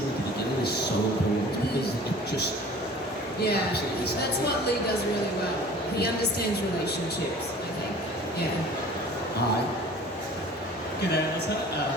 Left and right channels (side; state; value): both; normal; correlation 0.45